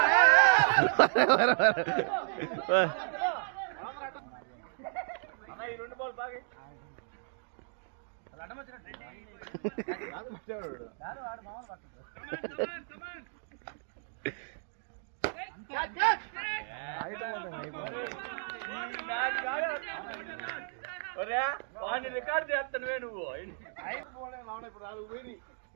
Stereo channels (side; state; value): left; silent; digital silence